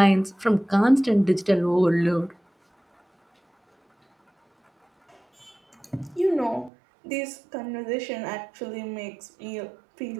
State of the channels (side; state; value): left; drops out; at 6.7 s